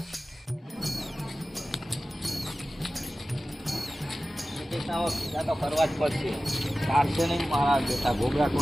ભેગા તો કરવા જ પડશે. ચાલશે નહીં મારા બેટા. ગોબરા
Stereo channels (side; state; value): both; normal; correlation 0.96